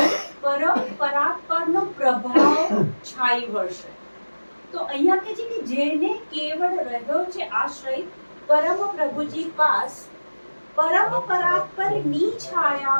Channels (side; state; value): both; inverted; correlation -1.00